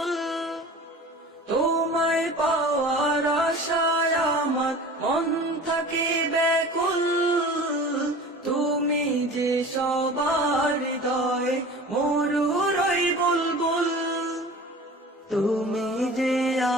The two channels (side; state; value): both; normal; correlation 0.39